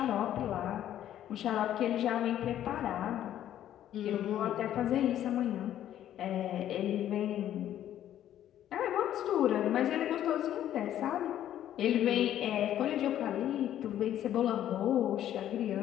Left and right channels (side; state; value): right; quieter; 11.5 dB